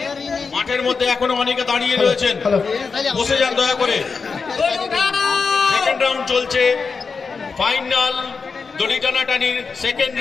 মাঠের মধ্যে এখনো অনেকে দাঁড়িয়ে রয়েছেন, বসে যান দয়া করে। সেকেন্ড রাউন্ড চলছে, ফাইনাল দড়ি টানাটানির সেকেন্ড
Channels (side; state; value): right; quieter; 5.0 dB